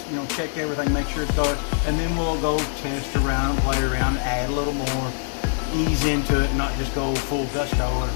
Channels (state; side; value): silent; right; digital silence